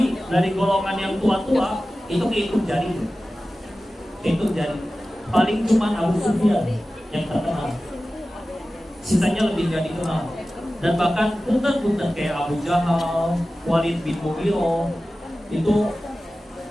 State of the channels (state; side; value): normal; both; correlation 0.95